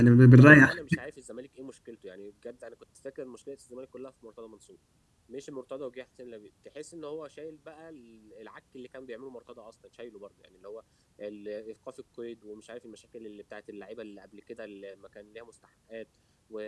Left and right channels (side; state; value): both; identical; correlation 1.00